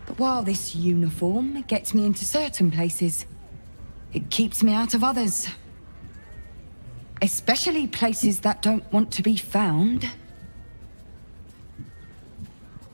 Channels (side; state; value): both; inverted; correlation -1.00